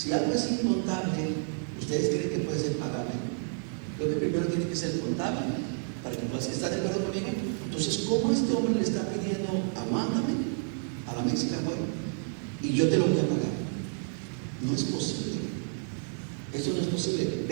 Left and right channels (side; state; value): left; silent; 57 dB below the other